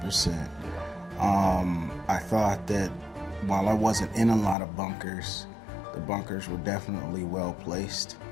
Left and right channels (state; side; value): drops out; right; at 4.5 s